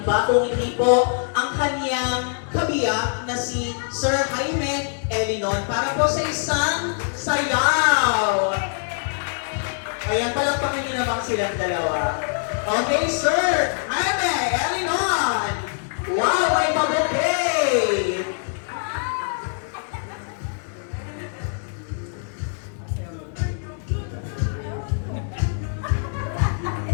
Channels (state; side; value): silent; right; 63 dB below the other